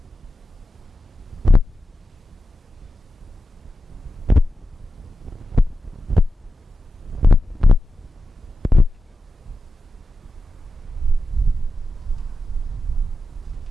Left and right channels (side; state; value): both; normal; correlation 0.91